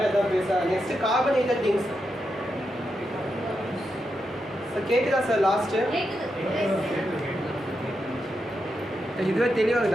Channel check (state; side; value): normal; both; correlation 0.86